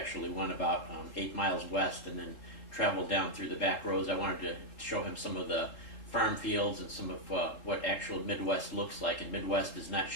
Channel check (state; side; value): late; right; 3.8 ms